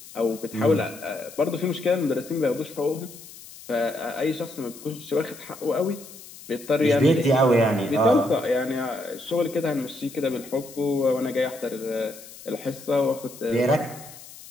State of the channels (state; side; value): noise; left; hiss, 17 dB below the sound